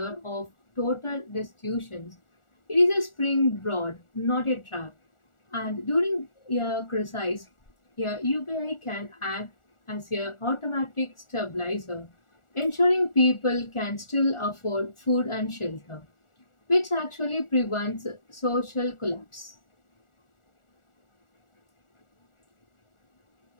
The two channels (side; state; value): right; late; 1.4 ms